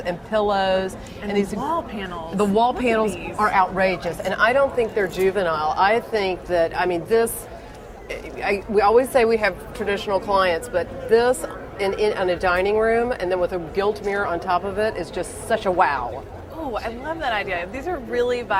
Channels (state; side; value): identical; both; correlation 1.00